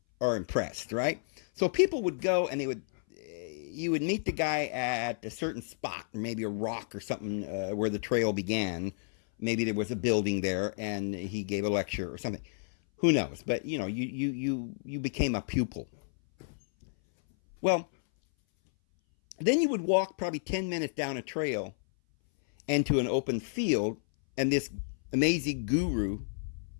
are impressed, right? So people would go and you would meet the guy at a certain spot, maybe a rock or something where the trail began. Maybe there was a building there and he gave a lecture or something. Who knows? But you became a pupil. Well, then you would walk probably 10 minutes down a trail and to an open field, and this amazing guru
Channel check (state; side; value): silent; right; 57 dB below the other